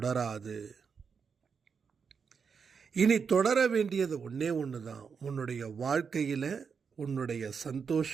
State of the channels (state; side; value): quieter; left; 6.0 dB